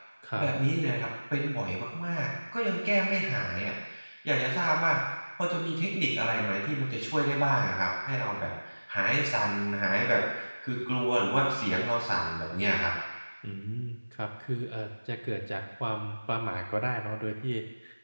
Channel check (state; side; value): inverted; both; correlation -1.00